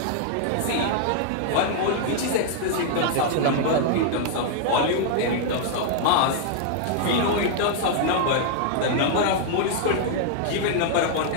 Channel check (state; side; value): different; both; correlation -0.01